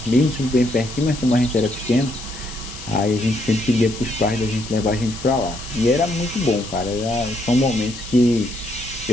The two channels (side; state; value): left; noise; hiss, 13 dB below the sound